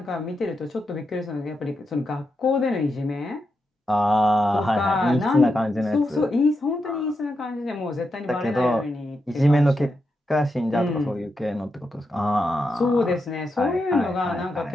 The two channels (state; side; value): normal; both; correlation 0.86